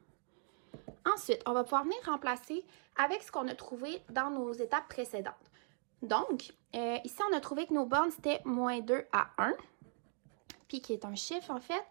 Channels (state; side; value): silent; left; 52 dB below the other